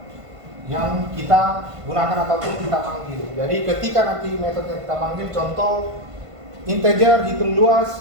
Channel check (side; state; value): left; late; 1.5 ms